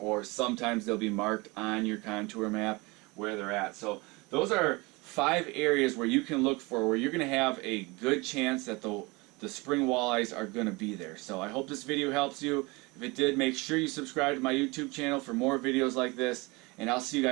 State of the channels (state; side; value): quieter; left; 25.2 dB